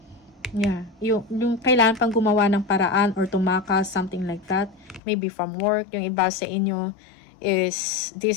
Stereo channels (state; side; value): drops out; right; at 5.0 s